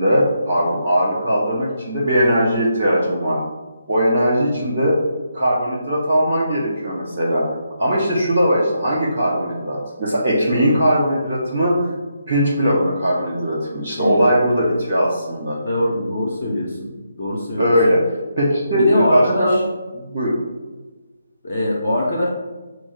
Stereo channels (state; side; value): inverted; both; correlation -0.81